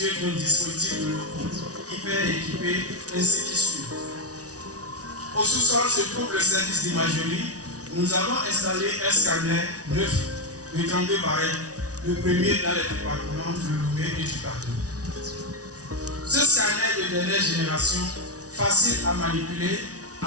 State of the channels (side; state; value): left; late; 0.68 ms